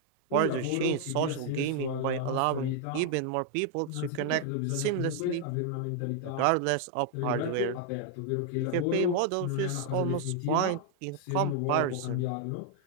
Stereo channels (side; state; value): both; different; correlation 0.00